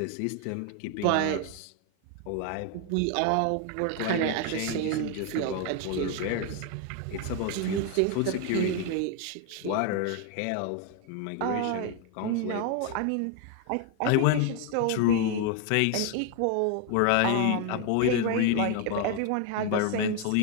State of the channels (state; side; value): different; both; correlation 0.01